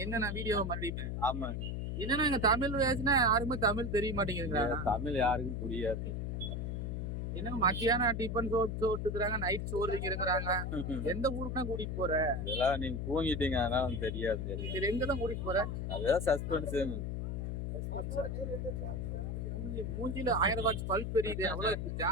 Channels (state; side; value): noise; left; hum, 2 dB below the sound